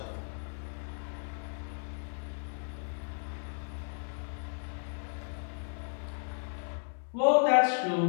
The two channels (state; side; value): silent; right; 55 dB below the other